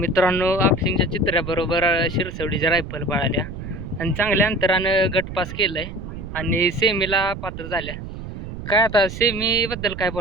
आपशिंगच्या चित्र्याबरोबर शिरसवडीच्या रायफल पळाल्या आणि चांगल्या अंतरानं गटपास केलंय आणि सेमीला पात्र झाल्या. काय आता सेमीबद्दल काय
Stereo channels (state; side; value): noise; right; rumble, 9 dB below the sound